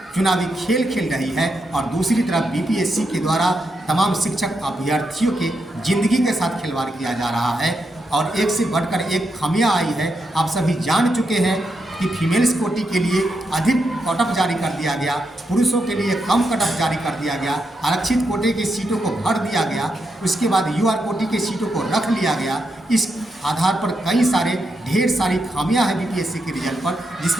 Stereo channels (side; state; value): both; normal; correlation 0.84